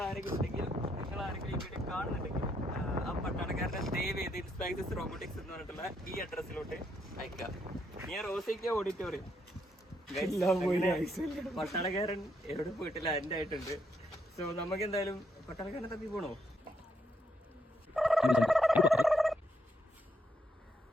ആരെങ്കിലും ഉണ്ടെങ്കിൽ, നിങ്ങൾ ആരെങ്കിലും ഈ വീഡിയോ കാണുന്നുണ്ടെങ്കിൽ ആ പട്ടാളക്കാരനെ ദയവ് ചെയ്ത് ഇൻസ്പൈസസ് റോബോട്ടിക്സ് എന്ന് പറഞ്ഞിട്ടുള്ള ഈ അഡ്രസ്സിലോട്ട് അയക്കാം. ഞാൻ റോസിക്ക ഓഡിറ്റോറിയം. പട്ടാളക്കാരൻ എവിടെ പോയിട്ടില്ല, എൻ്റെ ആയിട്ടുണ്ട്. സോ നമുക്ക് എന്തായാലും പട്ടാളക്കാരനെ തപ്പി പോണോ?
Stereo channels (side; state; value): both; normal; correlation 0.76